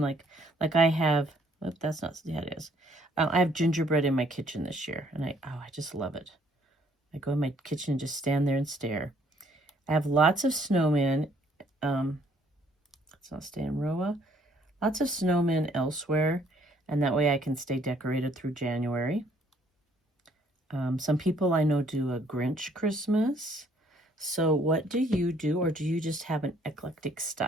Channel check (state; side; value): normal; both; correlation 0.63